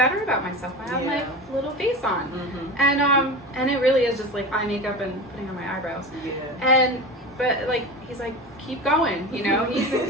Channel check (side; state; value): both; normal; correlation 0.28